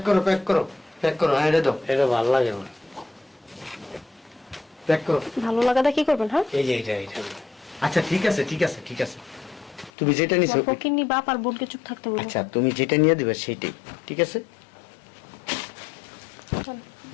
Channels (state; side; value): drops out; right; at 9.9 s